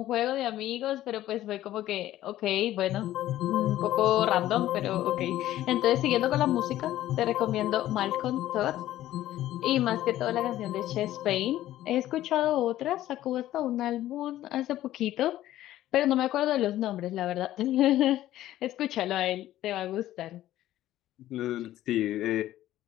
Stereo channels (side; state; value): right; quieter; 13.9 dB